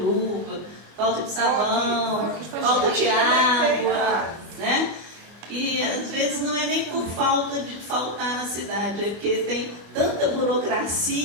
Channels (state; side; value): late; left; 24 ms